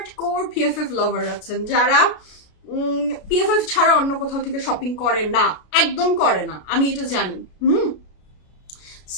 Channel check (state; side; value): late; right; 33 ms